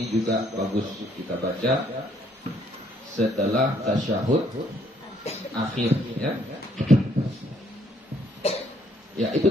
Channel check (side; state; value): both; normal; correlation 0.67